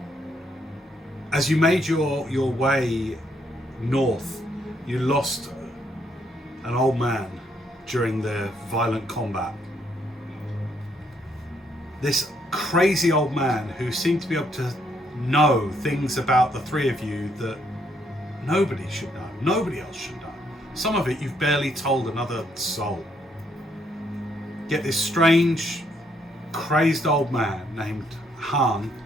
as you made your way north, you lost an old man during the violent combat. this crazy old man who seemed to be able to know things about the three of you that nobody should know, nobody else should know. Some of it you've barely told another soul. Yet this strange, crazed old man named Han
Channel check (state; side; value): normal; both; correlation 0.72